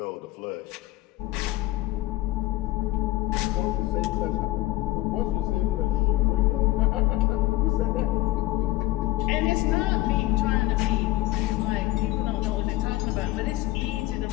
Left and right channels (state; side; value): quieter; right; 17.9 dB